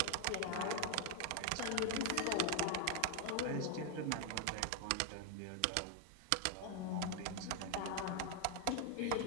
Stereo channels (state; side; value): different; both; correlation 0.00